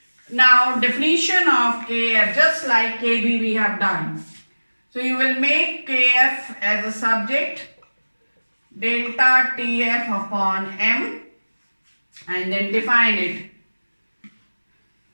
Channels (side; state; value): both; inverted; correlation -1.00